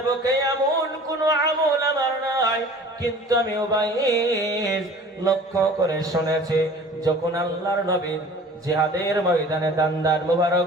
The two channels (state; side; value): normal; both; correlation 0.45